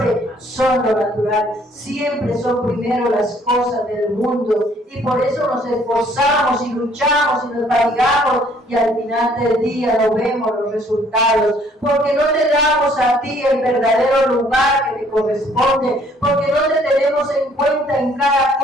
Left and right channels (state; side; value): normal; both; correlation 0.61